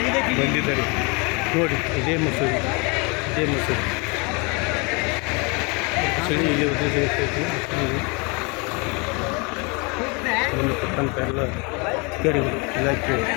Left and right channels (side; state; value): right; quieter; 30.3 dB